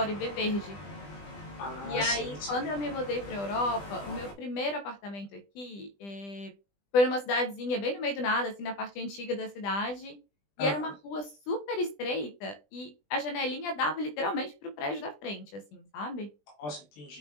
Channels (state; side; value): late; right; 20 ms